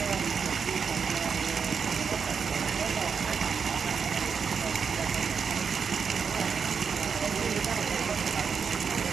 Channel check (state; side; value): quieter; left; 6.1 dB